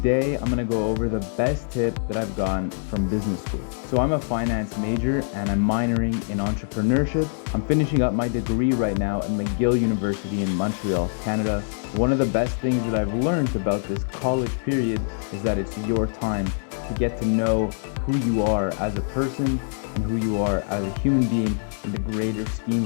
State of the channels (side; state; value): right; silent; digital silence